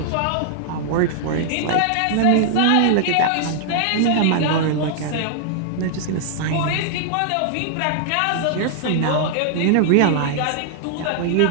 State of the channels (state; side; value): different; both; correlation -0.01